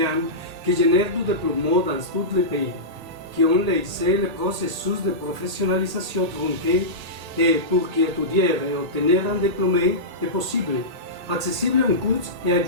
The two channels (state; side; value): late; left; 1.8 ms